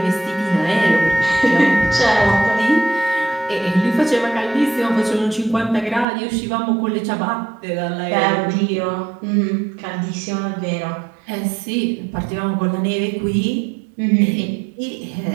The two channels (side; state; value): left; drops out; at 6.1 s